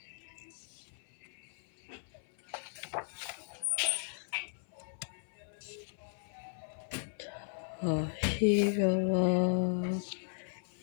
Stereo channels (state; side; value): silent; right; 54 dB below the other